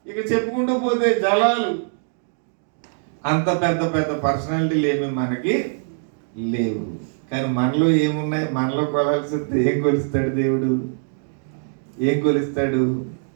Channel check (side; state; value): left; silent; digital silence